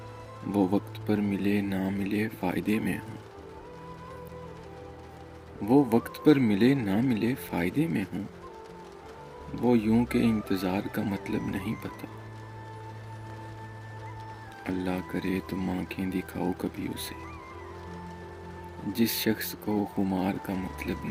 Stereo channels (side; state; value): both; identical; correlation 1.00